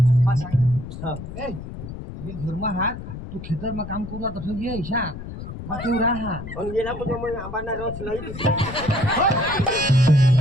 घरमा हात तू खेतर में काम करू तसं ये ईशा तू राहा गेला म्हणजे मग आंबाना रस नाही दिली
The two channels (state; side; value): noise; left; rumble, 10 dB below the sound